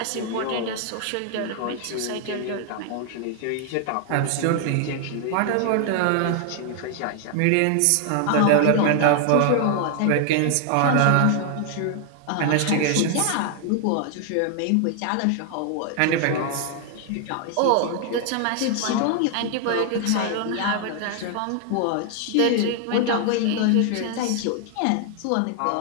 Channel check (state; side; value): different; both; correlation 0.00